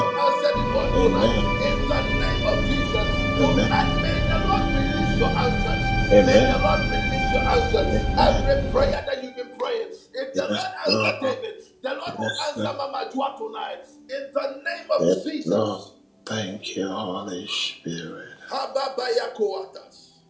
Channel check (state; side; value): identical; both; correlation 1.00